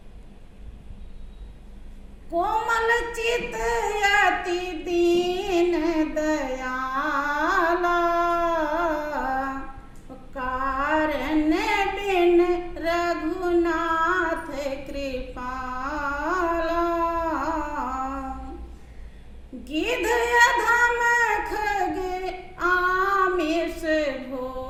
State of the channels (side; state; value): both; identical; correlation 1.00